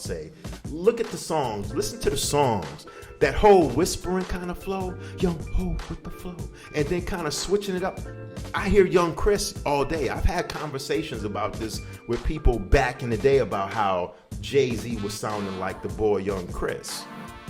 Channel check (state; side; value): identical; both; correlation 1.00